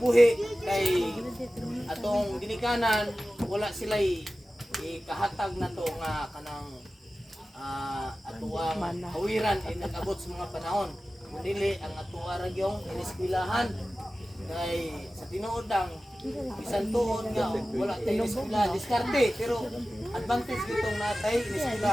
kay atong ginikanan wala sila ikahatag na to nga kanang atuang hawiran ay nag-abot sa mga panahon. Dili ang atuwa ra gyung iniskwelahan kay sa tinuod ang bisan tuod nga wala tayo iniskwela diskarte pero advantage gitong natay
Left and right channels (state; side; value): normal; both; correlation 0.96